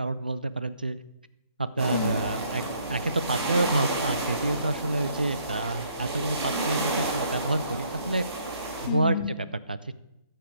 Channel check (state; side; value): inverted; both; correlation -0.66